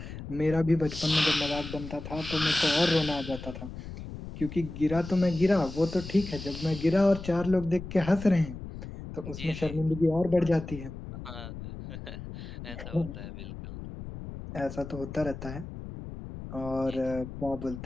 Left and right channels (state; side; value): noise; left; rumble, 10 dB below the sound